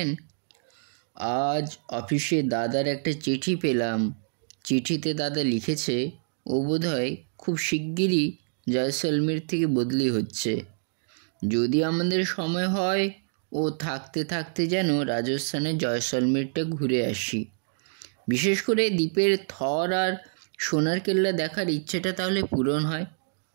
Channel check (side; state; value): left; silent; digital silence